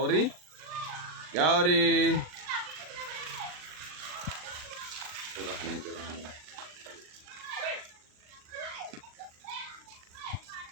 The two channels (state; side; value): late; left; 39 ms